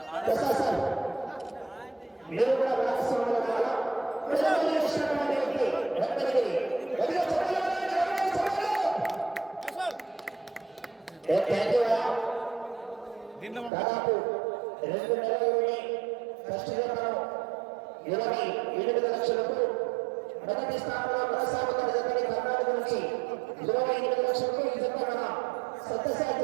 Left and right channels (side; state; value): left; drops out; at 13.7 s